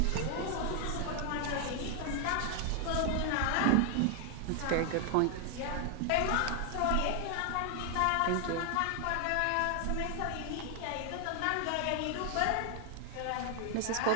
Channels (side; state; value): both; different; correlation 0.00